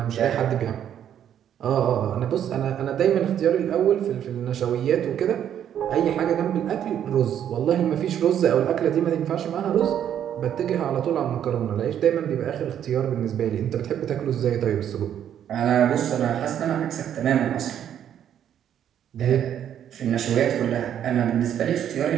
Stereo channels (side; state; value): left; quieter; 9.8 dB